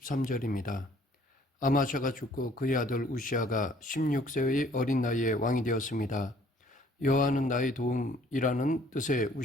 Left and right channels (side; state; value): both; normal; correlation 0.59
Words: 아마샤가 죽고 그의 아들 우시아가 16세의 어린 나이에 왕이 되었습니다. 여호와는 나의 도움이라는 뜻의